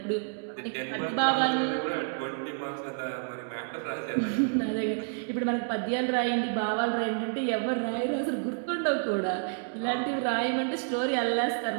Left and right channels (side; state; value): left; silent; digital silence